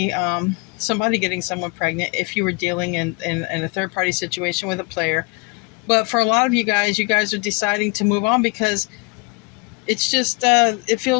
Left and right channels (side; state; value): right; quieter; 29.3 dB